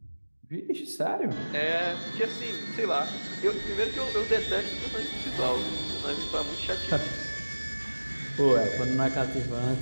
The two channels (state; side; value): inverted; both; correlation -1.00